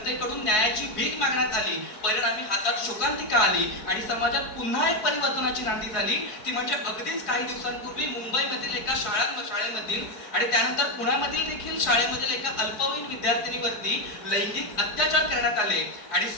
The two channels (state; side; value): late; right; 4.7 ms